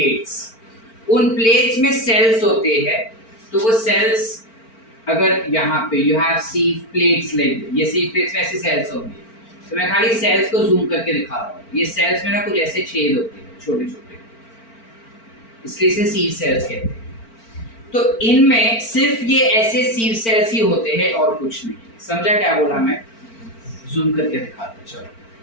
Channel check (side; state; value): right; late; 4.4 ms